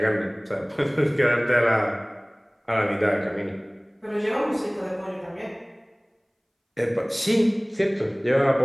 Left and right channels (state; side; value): identical; both; correlation 1.00